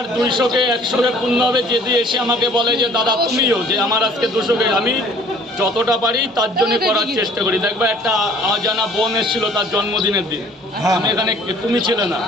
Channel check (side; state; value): both; normal; correlation 0.54